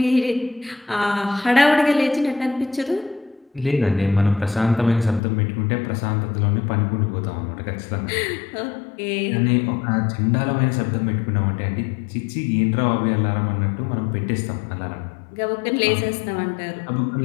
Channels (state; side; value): drops out; right; at 5.2 s